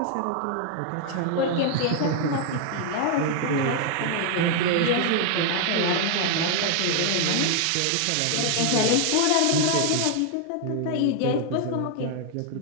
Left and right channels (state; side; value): different; both; correlation 0.00